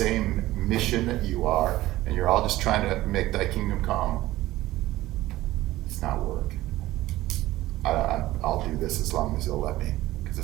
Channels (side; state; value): left; quieter; 16.5 dB